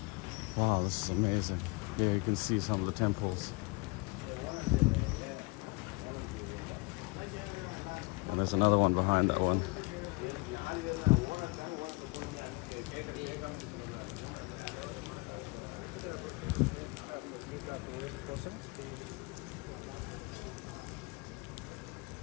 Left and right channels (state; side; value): quieter; right; 26.8 dB